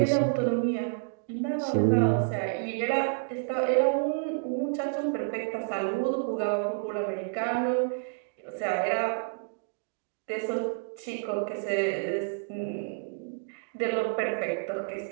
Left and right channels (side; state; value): left; silent; digital silence